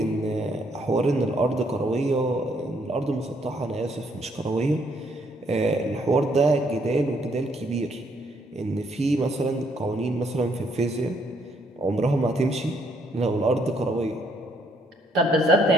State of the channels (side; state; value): both; normal; correlation 0.69